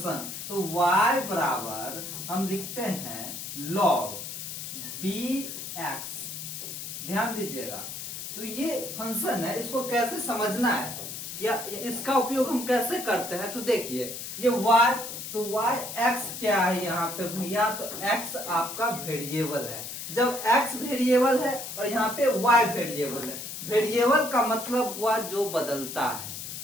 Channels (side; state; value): left; noise; hiss, 8 dB below the sound